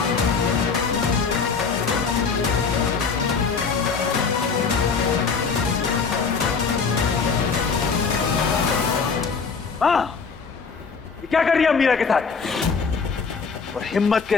हाँ, ये क्या कर रही है मीरा के साथ? और हिम्मत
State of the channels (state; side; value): quieter; right; 5.3 dB